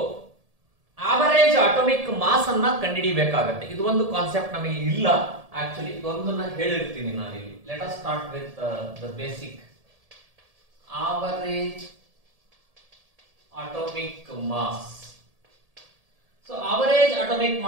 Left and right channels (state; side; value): late; left; 1.7 ms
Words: ಆವರೇಜ್ ಅಟೋಮಿಕ್ ಮಾಸ್ ಅನ್ನ ಕಂಡುಹಿಡಿಯಬೇಕಾಗತ್ತೆ. ಇದು ಒಂದು ಕಾನ್ಸೆಪ್ಟ್ ನಮಗೆ ಇಲ್ಲ. ಆಕ್ಚುಲಿ ಇದೊಂದನ್ನ ಹೇಳಿರ್ತೀನಿ ನಾನು ಇಲ್ಲಿ. Let us start with the basic average atomic mass. So average atomic